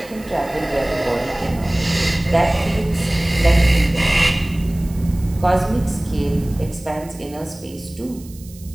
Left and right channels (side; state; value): right; noise; hiss, 22 dB below the sound